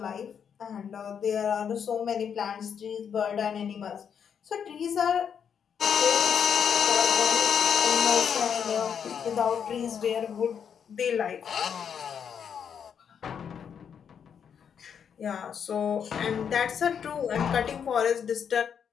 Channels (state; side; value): quieter; right; 7.6 dB